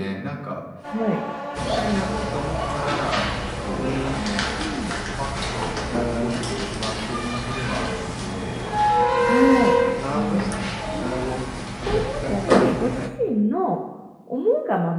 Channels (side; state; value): both; identical; correlation 1.00